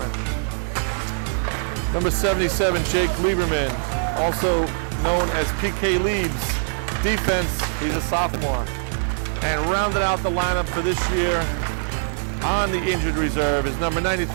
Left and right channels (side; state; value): left; silent; digital silence